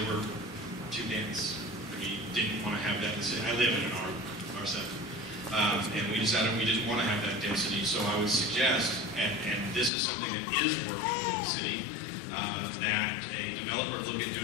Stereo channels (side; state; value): right; drops out; at 9.9 s